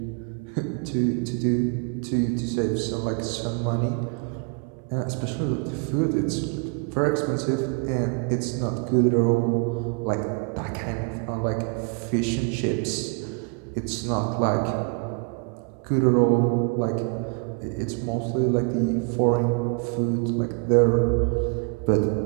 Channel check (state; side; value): quieter; left; 33.9 dB